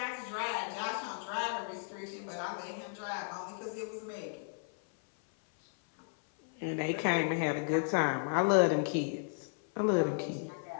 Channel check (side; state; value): right; silent; 55 dB below the other